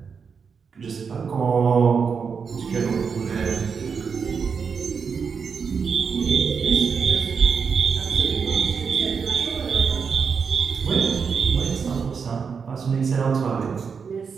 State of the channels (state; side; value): quieter; left; 6.0 dB